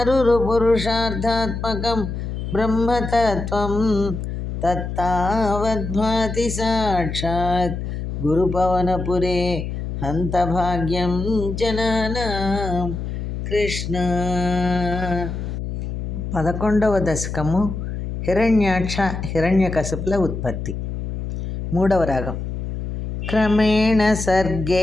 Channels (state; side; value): noise; left; hum, 5 dB below the sound